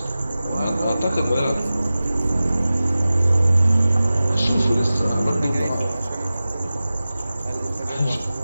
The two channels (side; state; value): both; inverted; correlation -0.96